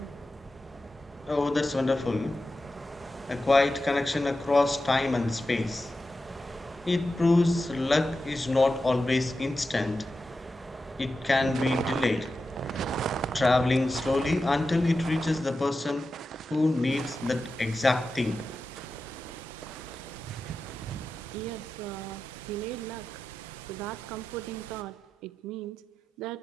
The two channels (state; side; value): normal; both; correlation 0.92